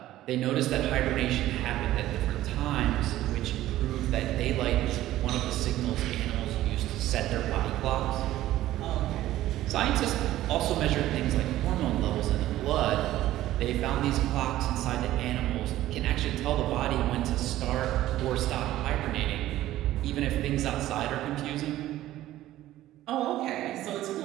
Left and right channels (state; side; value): quieter; left; 14.5 dB